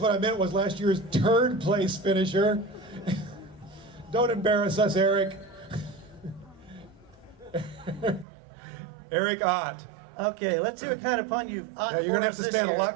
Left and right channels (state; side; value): drops out; left; at 8.2 s